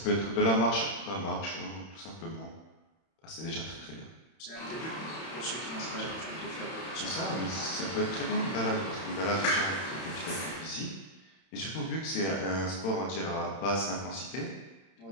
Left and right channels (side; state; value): right; late; 31 ms